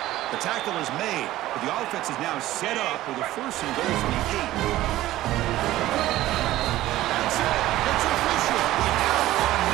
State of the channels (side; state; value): left; quieter; 15.4 dB